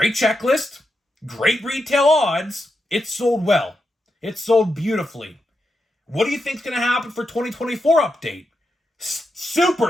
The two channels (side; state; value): both; normal; correlation 0.86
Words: checklist, great retail odds. It sold well. It sold beautifully. What do you think's going to happen for 2024 Update?